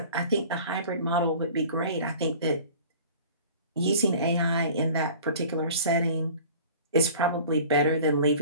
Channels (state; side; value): inverted; both; correlation -0.44